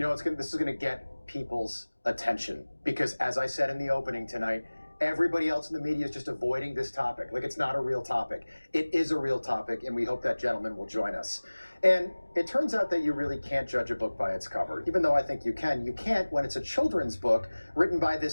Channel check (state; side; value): inverted; both; correlation -1.00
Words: is going to get people's attention because, as I said in the opening tonight, everybody else in the media is just avoiding this topic. Like, it's not a real topic. It is a real topic, and we hope that gentleman will join us. And it turns out that you really can't judge a book by its cover, even though I think you can. You can't when it's a children's book written by